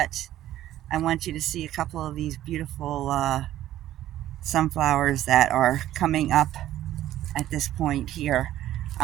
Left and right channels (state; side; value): quieter; left; 13.2 dB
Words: I want you to see a couple of these beautiful sunflowers that are coming up at this point here.